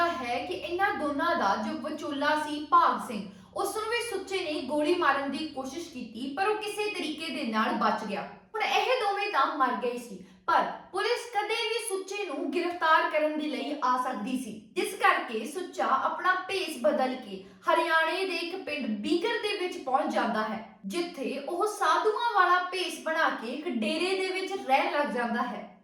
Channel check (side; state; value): both; identical; correlation 1.00